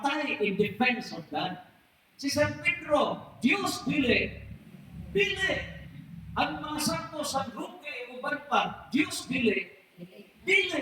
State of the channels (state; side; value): identical; both; correlation 1.00